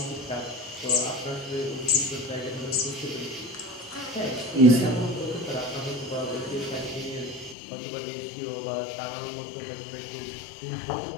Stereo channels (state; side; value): drops out; right; at 7.6 s